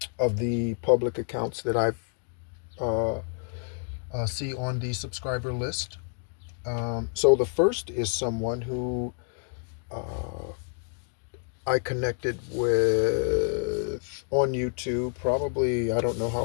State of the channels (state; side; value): silent; right; 56 dB below the other